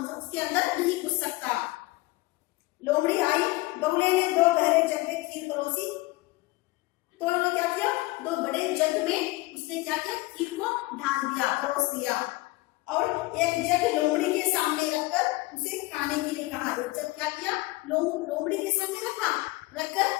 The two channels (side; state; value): right; quieter; 21.1 dB